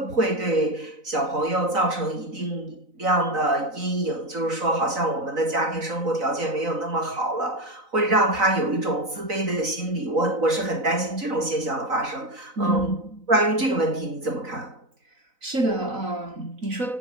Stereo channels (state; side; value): late; left; 4.0 ms